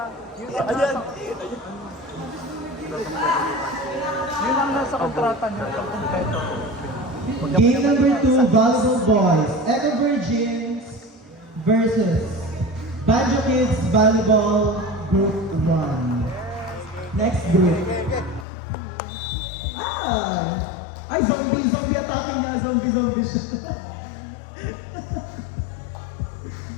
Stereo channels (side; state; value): right; drops out; at 18.4 s